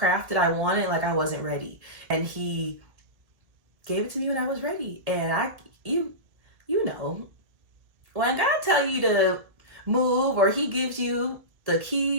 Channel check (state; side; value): late; left; 1.7 ms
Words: that I wanted, like, I wasn't ready, and he gave it to me when I was ready. And you know, when God tell you to move, or he gives you the